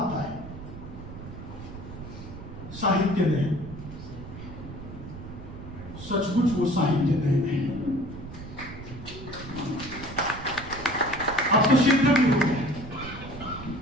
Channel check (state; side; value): noise; right; rumble, 12 dB below the sound